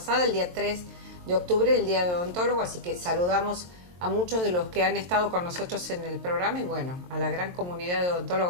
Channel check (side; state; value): left; late; 23 ms